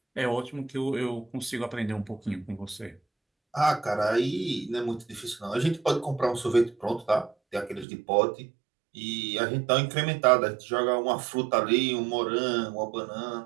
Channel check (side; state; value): left; drops out; at 7.9 s